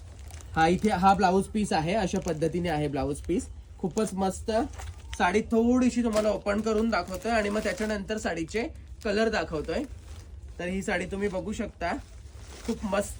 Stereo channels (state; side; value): identical; both; correlation 1.00